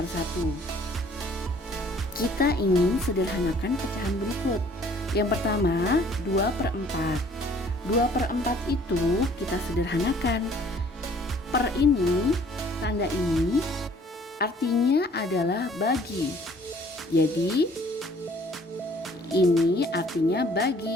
1. Kita ingin sederhanakan pecahan berikut. Yang pertama, 2/4. 2/4 itu kita sederhanakan. Per ini, tanda ini artinya adalah bagi. Jadi ini artinya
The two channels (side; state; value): both; normal; correlation 0.57